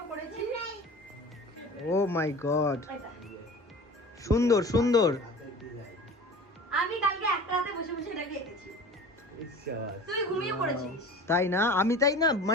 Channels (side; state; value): both; normal; correlation 0.39